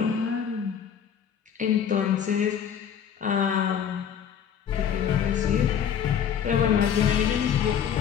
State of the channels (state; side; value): quieter; right; 8.3 dB